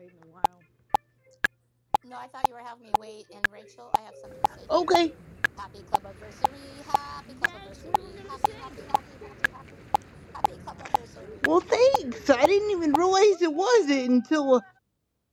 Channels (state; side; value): identical; both; correlation 1.00